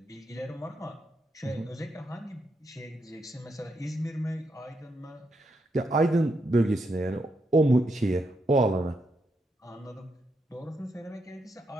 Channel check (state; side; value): normal; both; correlation 0.81